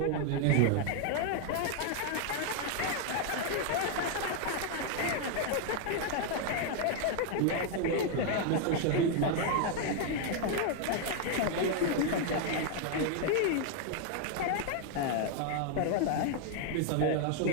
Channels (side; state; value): both; different; correlation 0.00